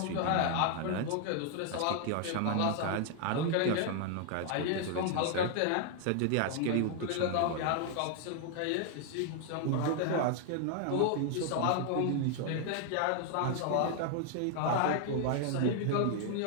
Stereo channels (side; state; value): both; different; correlation 0.00